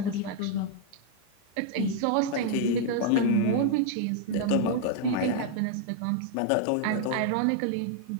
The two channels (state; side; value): different; both; correlation -0.01